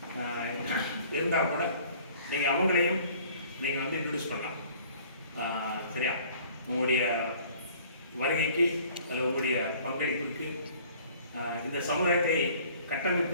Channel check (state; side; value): inverted; both; correlation -0.53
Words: இருந்தால் கூட நீங்கள் அவங்களையும் நீங்கள் வந்து இன்ட்ரடியூஸ் பண்ணலாம். சரியா? உங்களுடைய வருகைக்கு அல்லது உங்களுடைய பங்களிப்புக்கு இந்த சமுதாயத்தை